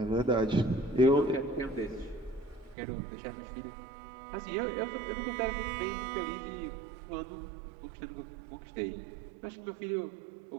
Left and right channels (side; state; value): left; drops out; at 2.8 s